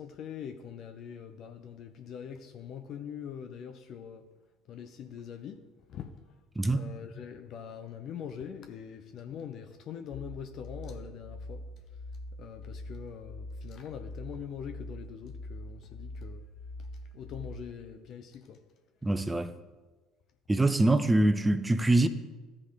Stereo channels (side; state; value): both; normal; correlation 0.88